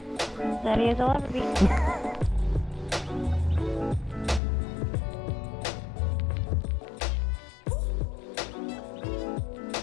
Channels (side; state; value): right; drops out; at 4.4 s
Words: Ready as I'll ever be.